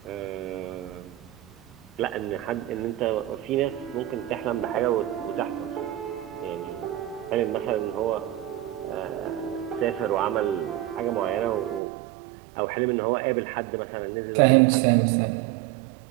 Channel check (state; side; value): drops out; left; at 11.8 s